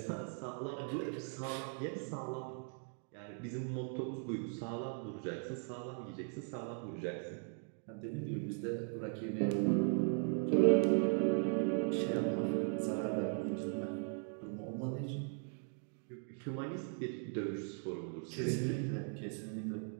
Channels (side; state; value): left; silent; 52 dB below the other